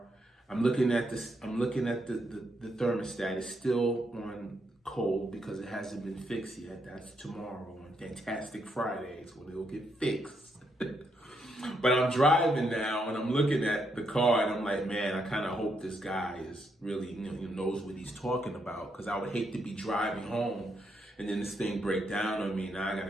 I'm looking at this, the thermostat is still on cold because it hasn't been fixed yet. That's tomorrow on Fantastic Fridays when it'll get fixed. But I'm driving now and I'm looking at the car and I'm like, man, I kind of hope this guy is really, knows what he's talking about, because I would hate to be driving home and then this thing break down on me. Now I got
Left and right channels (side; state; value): both; normal; correlation 0.78